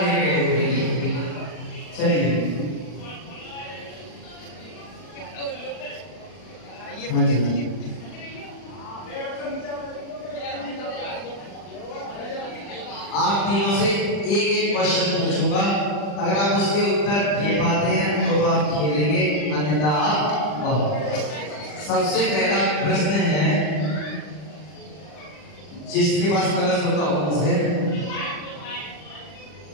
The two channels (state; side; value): late; right; 40 ms